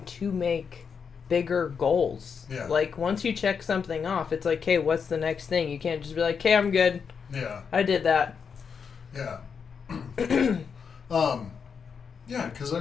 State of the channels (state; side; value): quieter; right; 6.3 dB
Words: to make bigger goals. Yeah. Like once you check something off, it's like, hey, what's the next thing? You can't just be like, hey, I'm good. Yeah. I did that. Yeah. Yeah, because I